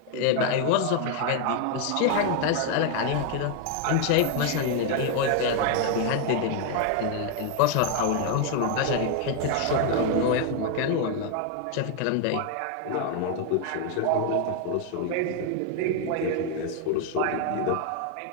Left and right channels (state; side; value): different; both; correlation 0.00